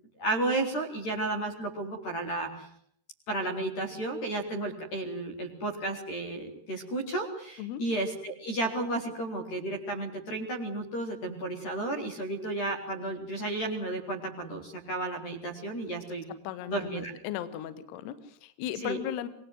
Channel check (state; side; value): late; right; 13 ms